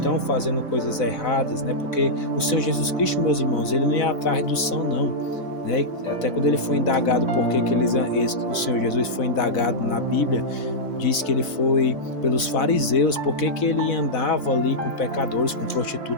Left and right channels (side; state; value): right; late; 4.0 ms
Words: fazendo coisas erradas, né? Porque o Senhor Jesus Cristo, meus irmãos, ele não é atrás do são, não. Né? Até quando ele foi indagado o Senhor Jesus foi indagado na Bíblia, diz que ele foi pelos fariseus, porque que ele andava ali com pecadores, com